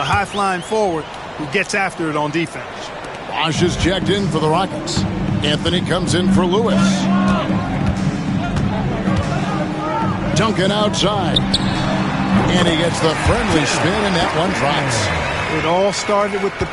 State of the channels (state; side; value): identical; both; correlation 1.00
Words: A high-flying forward who gets after it on defense. Bosch is checked in for the Rockets. Anthony comes in for Lewis. Duncan outside. And he gets the friendly spin, and that one drops. It all started with the